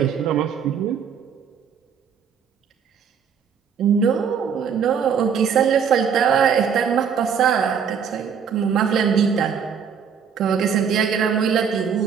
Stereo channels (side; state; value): left; quieter; 7.1 dB